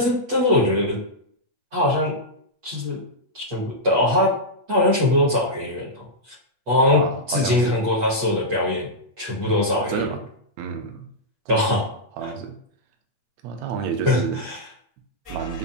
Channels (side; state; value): left; late; 8.3 ms